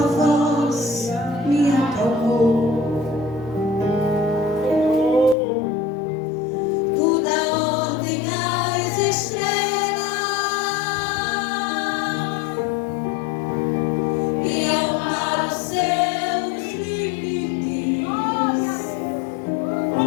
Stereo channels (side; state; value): right; drops out; at 5.4 s